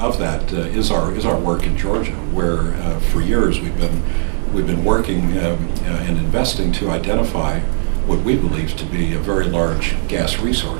that is our work in Georgia, where for years we've been working and investing to identify what we believe to be a very large gas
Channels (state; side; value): silent; left; digital silence